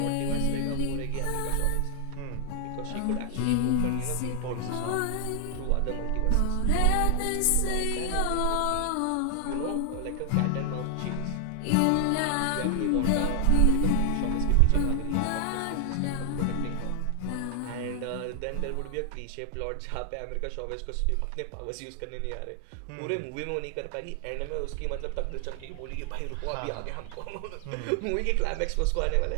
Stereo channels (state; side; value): different; both; correlation 0.00